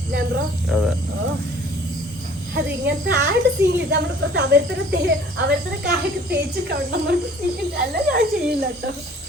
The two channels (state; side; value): normal; both; correlation 0.52